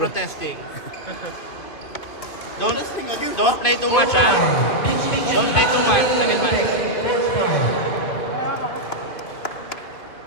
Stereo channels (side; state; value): right; late; 2.5 ms